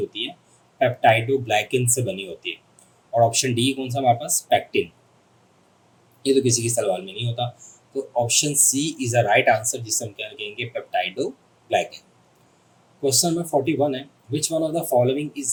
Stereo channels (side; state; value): both; identical; correlation 1.00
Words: है, पेप्टाइडोग्लाइकिन से बनी होती है। और ऑप्शन डी कौन सा हमारे पास, पैक्टिन, ये तो किसी की सेल वॉल में नहीं होता। तो option C is a right answer, जिससे हम क्या कहेंगे, पेप्टाइडोग्लाइकिन। क्वेश्चन नंबर 41 है, which one of the following